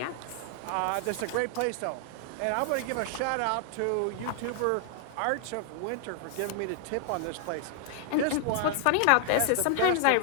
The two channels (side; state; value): both; different; correlation 0.00